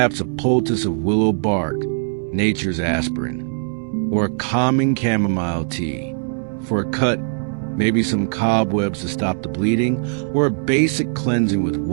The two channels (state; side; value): silent; left; digital silence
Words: a poultice of willow bark, nature's aspirin, or a calming chamomile tea. For a cut, maybe some cobwebs to stop the bleeding, or a basic cleansing with